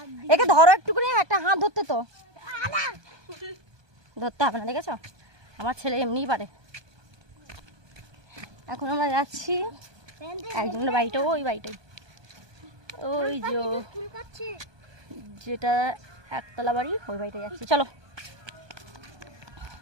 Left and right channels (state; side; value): late; left; 1.2 ms